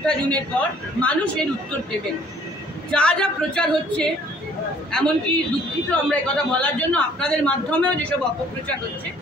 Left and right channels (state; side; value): normal; both; correlation 0.58